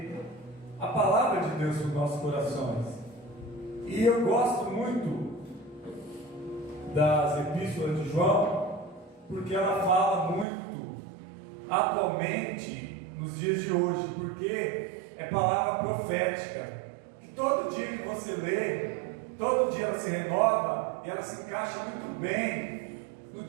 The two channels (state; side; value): drops out; left; at 10.5 s